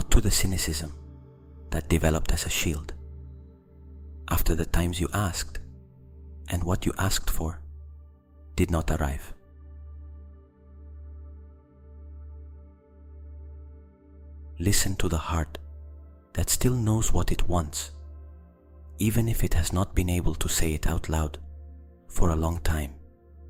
to the cynicism that developed as a shield after the times you asked and what you asked for did not arrive. Listen to the heart that still knows what it wants, even if it has not been able to say it out loud for a long time.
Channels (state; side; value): identical; both; correlation 1.00